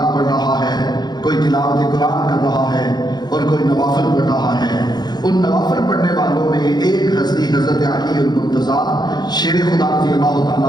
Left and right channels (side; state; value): right; late; 0.20 ms